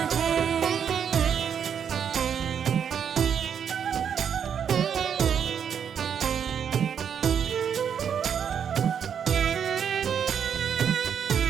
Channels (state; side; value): quieter; left; 7.9 dB